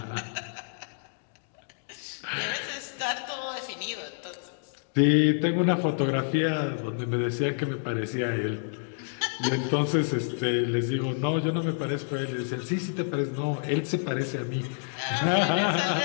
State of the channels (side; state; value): right; silent; digital silence